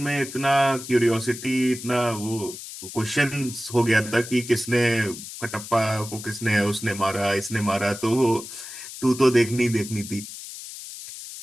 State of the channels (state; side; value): noise; left; hiss, 12 dB below the sound